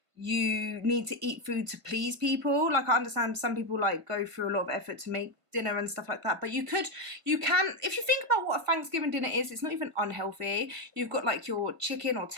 you need to eat food to please people. Like, I understand some people like go through a lot of effort to make dinner and stuff like that. But you can, if you think about what a Thanksgiving dinner is, it's not even unhealthy. You've got like your chicken or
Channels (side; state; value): left; late; 1.5 ms